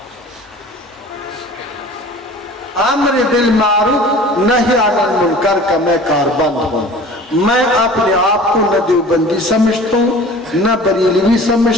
امر بالمعروف نہی عن المنکر کا میں کاربند ہوں۔ میں اپنے آپ کو نہ دیوبندی سمجھتا ہوں، نہ بریلوی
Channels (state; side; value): normal; both; correlation 0.43